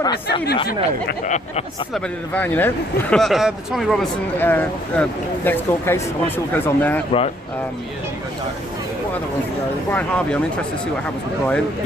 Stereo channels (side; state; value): both; normal; correlation 0.66